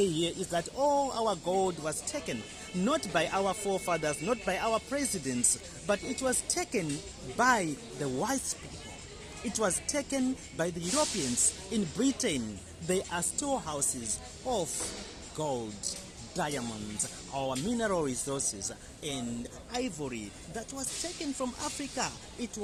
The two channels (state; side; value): identical; both; correlation 1.00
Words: here is that all our gold was taken, not by our forefathers, not by our presidents, but it was taken by the white people. It was taken by the Europeans. In Britain, there are storehouses of gold, diamonds, our mineral resources, and ivory that was taken from Africa. It